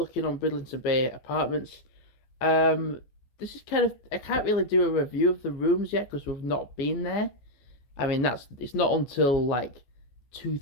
on Bridlington Bay Apartments. This is kind of, I can't really do a review of the rooms yet because we've not been there. I mean, it's not until like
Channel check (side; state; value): right; late; 14 ms